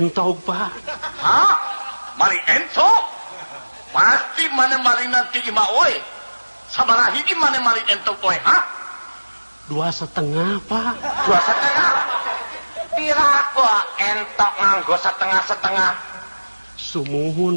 Pak. Hah? Maling ento? Pasti mana maling nanti ima oi. Sabaraha hiji mana maling ento oi, ha? 2,5 Pak. 2,5. Pira kok entok nganggo setengah-setengah? Sumuhun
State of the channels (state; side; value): inverted; both; correlation -1.00